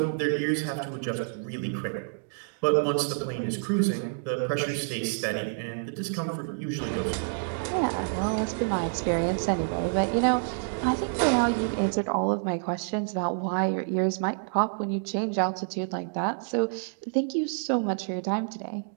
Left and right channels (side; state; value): left; silent; digital silence